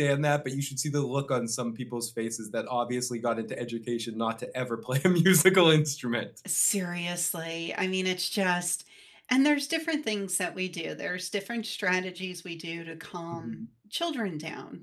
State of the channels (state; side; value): identical; both; correlation 1.00